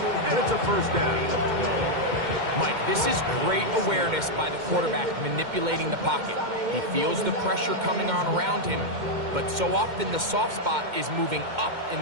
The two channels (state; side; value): late; left; 2.1 ms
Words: and it's a 1st down. Mike, this is great awareness by the quarterback manipulating the pocket. He feels the pressure coming on around him, but so often the soft spot is moving up in